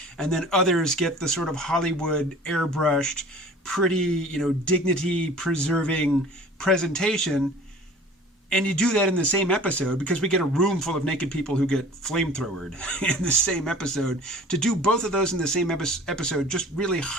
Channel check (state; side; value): normal; both; correlation 0.45